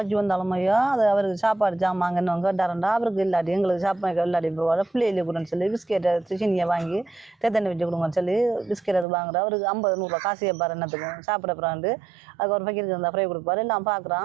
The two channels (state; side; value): drops out; left; at 9.1 s